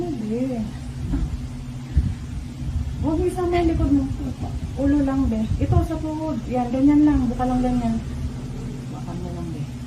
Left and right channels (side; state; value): both; identical; correlation 1.00